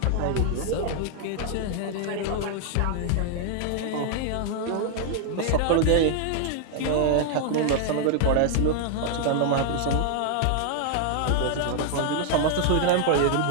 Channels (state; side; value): different; both; correlation 0.00